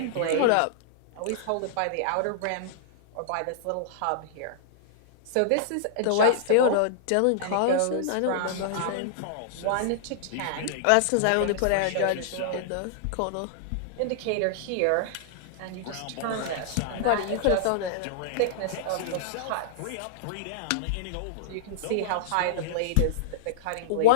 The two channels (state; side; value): different; both; correlation -0.02